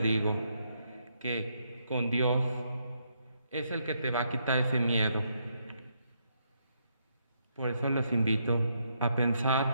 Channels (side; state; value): both; inverted; correlation -0.76